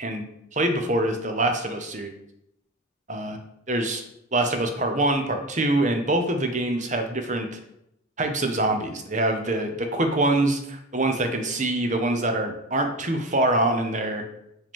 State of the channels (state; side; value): normal; both; correlation 0.26